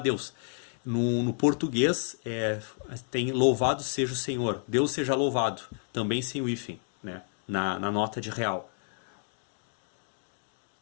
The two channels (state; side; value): silent; right; digital silence